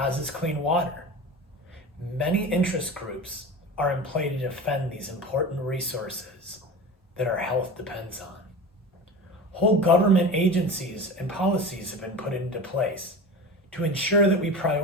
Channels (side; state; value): both; normal; correlation 0.30